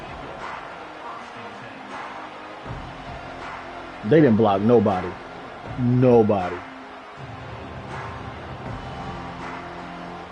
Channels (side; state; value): both; identical; correlation 1.00